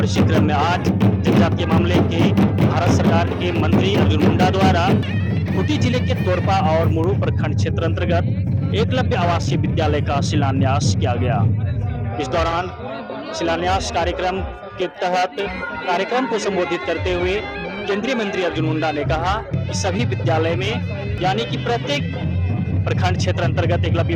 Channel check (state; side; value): identical; both; correlation 1.00